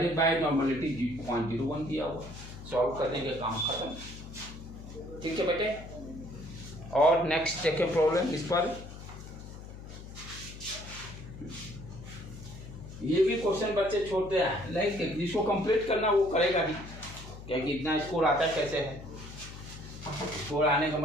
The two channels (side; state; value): left; noise; hum, 13 dB below the sound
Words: बाय नॉर्मलिटी 0.01 दिया हुआ। सॉल्व कर देंगे, काम खत्म। ठीक है बेटे। और नेक्स्ट देखें प्रॉब्लम इस पर। ये भी क्वेश्चन बच्चे छोड़ते हैं, लाइक जिसको कंप्लीट करना वो करेगा ही, क्योंकि इतना स्कोर आता कैसे है। स्कोर आने का